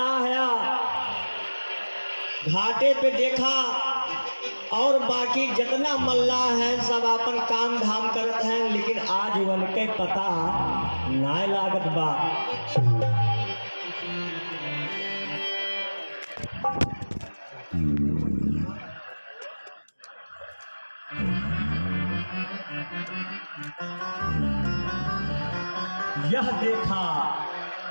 है। घाटे पे देखा और बाकी जितना मल्ला है सब अपन काम धाम करत हैं, लेकिन आज उनके पता ना लागत बा। यह देखा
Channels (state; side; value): inverted; both; correlation -1.00